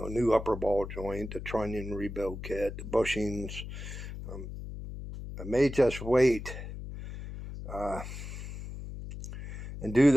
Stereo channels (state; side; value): noise; left; hum, 9 dB below the sound